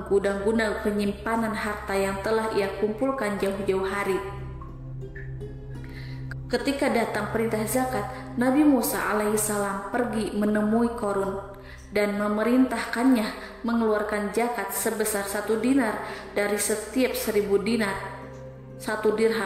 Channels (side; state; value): both; identical; correlation 1.00